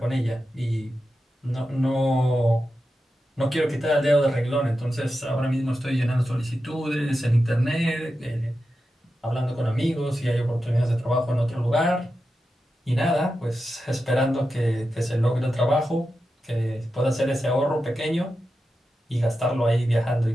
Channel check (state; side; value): normal; both; correlation 0.90